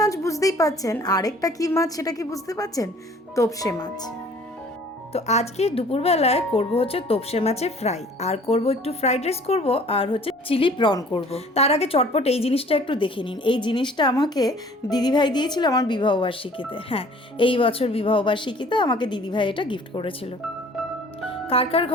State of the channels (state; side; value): normal; both; correlation 0.52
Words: বুঝতেই পাচ্ছেন, আরেকটা কি মাছ সেটা কি বুঝতে পারছেন? তোপসে মাছ। তো আজকে দুপুরবেলায় করব হচ্ছে তোপসে মাছের ফ্রাই, আর করব একটু ফ্রাইড রাইস করব, আর হচ্ছে চিলি প্রন করব। তার আগে চটপট এই জিনিসটা একটু দেখে নিন। এই জিনিসটা আমাকে দিদিভাই দিয়েছিল আমার বিবাহবার্ষিকীতে। হ্যাঁ, এই বছর বিবাহবার্ষিকীতে আমাকে দিদিভাই এটা গিফট করেছিল। কার কার